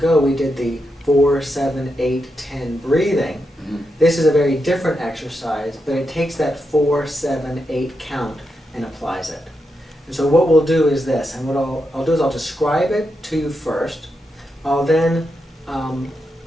we did the 4, 7, 8, 10 breathing. Mm-hmm. This is a very different exercise, but it takes that 4, 7, 8 count and applies it. And so what we'll do is this, and what I'll do is I'll describe it to you first. I'll then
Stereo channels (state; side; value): normal; both; correlation 0.85